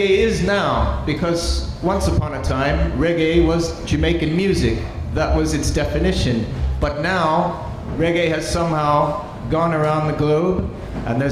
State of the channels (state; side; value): identical; both; correlation 1.00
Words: is now, because once upon a time, reggae was Jamaican music. That was its definition. But now, reggae has somehow gone around the globe, and